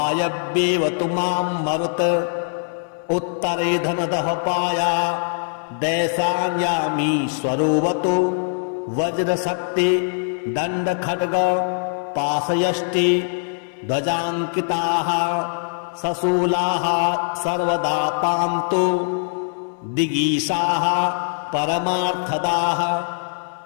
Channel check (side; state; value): right; silent; 64 dB below the other